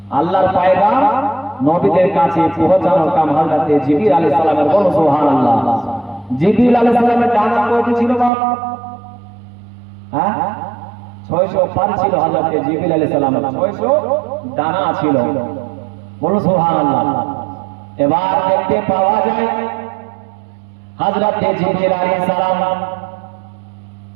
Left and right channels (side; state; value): left; drops out; at 8.3 s